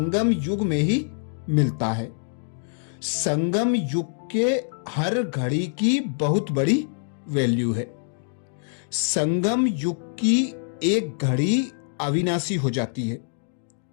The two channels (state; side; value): silent; right; digital silence